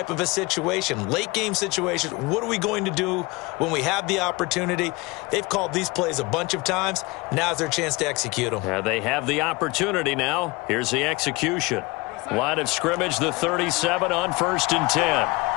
of a situation, late game situation. What are we going to do when we have the opportunity? They've called these plays a bunch of times. Now's their chance to execute them. They have the opportunity now. Here's the execution. Line of scrimmage, the 37 on 1st and 10.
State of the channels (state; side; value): quieter; right; 23.9 dB